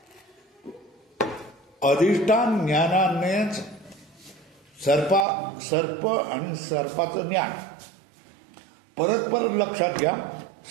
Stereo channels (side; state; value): left; drops out; at 5.2 s